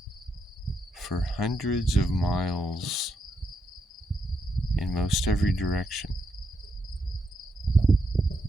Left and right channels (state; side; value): normal; both; correlation 0.81